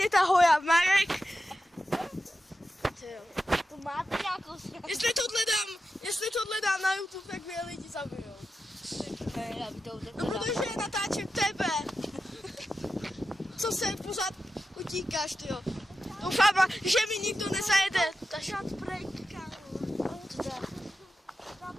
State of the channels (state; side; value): normal; both; correlation 0.91